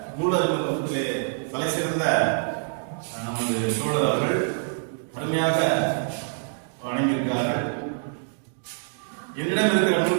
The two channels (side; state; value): left; silent; digital silence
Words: நூல் அறிமுகத்திலே தலை சிறந்த நமது தோழர் அவர்கள் அருமையாக வழங்கியிருக்கிறார்கள். என்னிடம் இருக்கிற